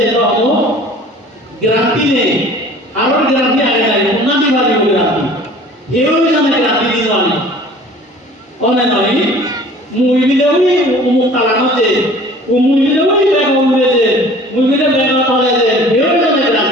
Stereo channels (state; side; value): normal; both; correlation 0.47